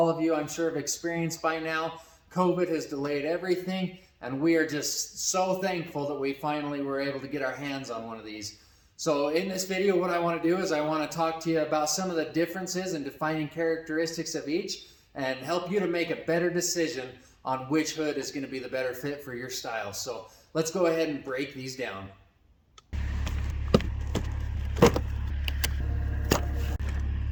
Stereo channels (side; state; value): both; identical; correlation 1.00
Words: of you I'm sure have experienced by now, COVID has delayed everything, and we are just so thankful that we finally were able to get our hands on one of these. So in this video, what I want to do is I want to talk to you about some of the differences and defining characteristics of each, and help you to make a better decision on which hood is going to be the better fit for your style. So let's go ahead and break these down.